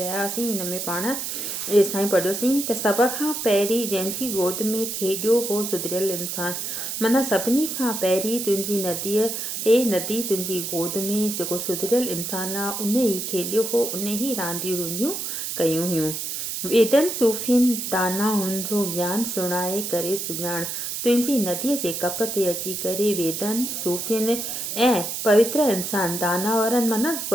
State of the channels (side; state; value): right; noise; hiss, 4 dB below the sound